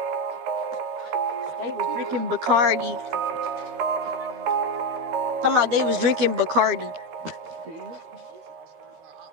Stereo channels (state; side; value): late; left; 13 ms